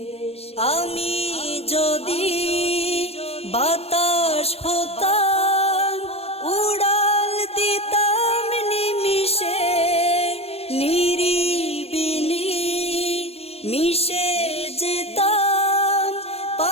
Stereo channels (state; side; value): late; right; 0.29 ms